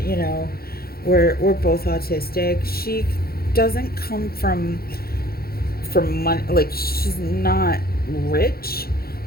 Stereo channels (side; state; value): right; late; 0.44 ms